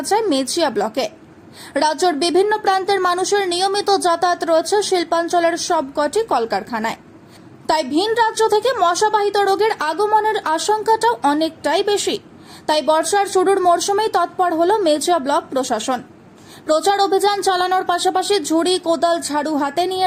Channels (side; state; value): both; identical; correlation 1.00